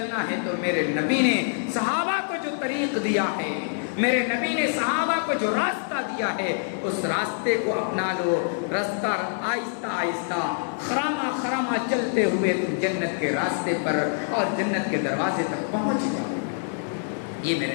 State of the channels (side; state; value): right; silent; digital silence